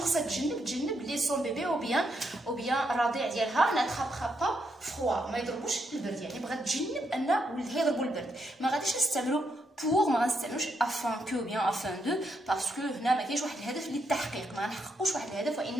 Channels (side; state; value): both; normal; correlation 0.79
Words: خصها تجنب لي سون بيبي او بيان الرضيع ديالها ناترابخا با فروا ما يضربوش البرد، يعني بغات تجنب ان ولدها يضربوا البرد. ما غاديش نستعملوا بور ما غنستعملوش افان كو بيان افان دو باسكو هنا ما كاينش واحد الهدف للتحقيق، ما غنحققوش واحد الهدف